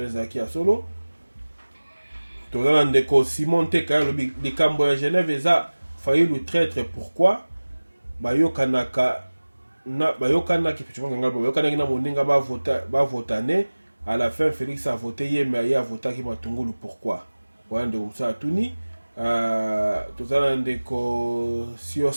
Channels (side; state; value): both; inverted; correlation -1.00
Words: ya solo toza na ndeko Simon Teka alobi likambo ya Genève eza failli le traître pourquoi bayokanaki na moninga bavotane à la fin Félix a voté hier mais il a voté qui matungulu pourquoi ouais ndeko msa tuni toza na ndeko